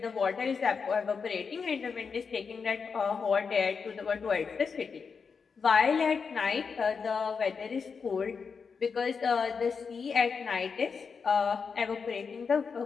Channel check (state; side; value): quieter; right; 5.6 dB